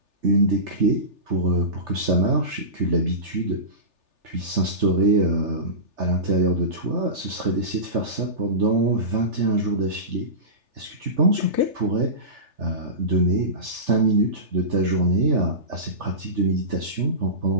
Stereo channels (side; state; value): left; late; 3.4 ms